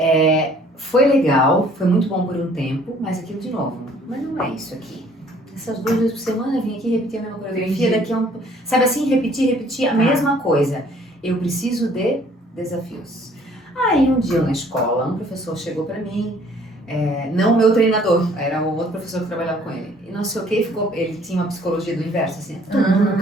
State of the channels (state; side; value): normal; both; correlation 0.58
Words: foi legal, foi muito bom por um tempo, mas aquilo de novo, mas não é isso aqui. Essas 2 vezes por semana eu vim aqui repetir a mesma coreografia, Entendi. daqui a um... Sabe assim, repetir a Tá. mesma coisa. Eu preciso de desafios. Aí um dia na escola, um professor chegou pra mim, não o meu treinador, era o outro professor que trabalhava com ele. E não sei o que, ele tinha uma psicologia do inverso, assim, tu